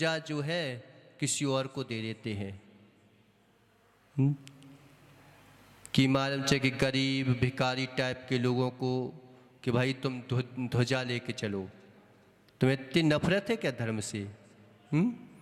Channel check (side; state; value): both; identical; correlation 1.00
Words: जो है किसी और को दे देते हैं, कि मालूम चाहिए कि गरीब भिखारी टाइप के लोगों को, कि भाई तुम ध्वजा लेके चलो। तुम्हें इतनी नफरत है क्या धर्म से,